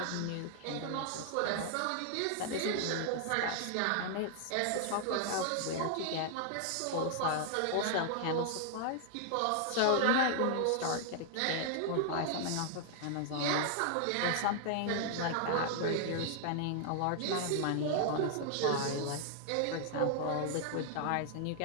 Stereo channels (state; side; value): different; both; correlation 0.00